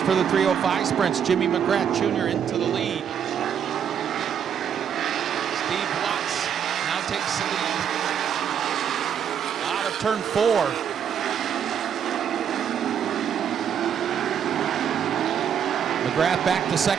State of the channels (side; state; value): left; quieter; 8.3 dB